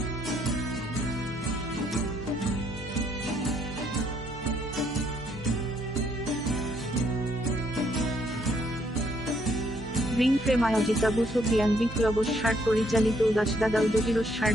Ring frame আয়োজিত আবু সুফিয়ান বিপ্লবস্যার পরিচালিত উদাসদাদা ও জহিরস্যার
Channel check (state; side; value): normal; both; correlation 0.70